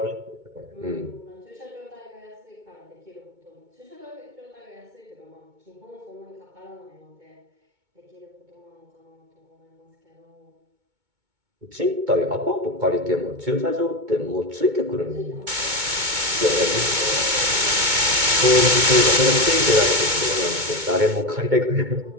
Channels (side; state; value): left; late; 2.2 ms